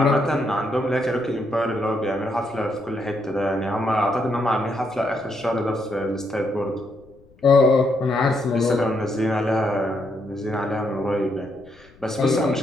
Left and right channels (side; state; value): left; noise; rumble, 28 dB below the sound